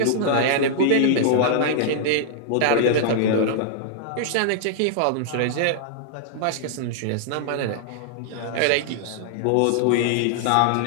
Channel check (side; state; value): both; different; correlation -0.01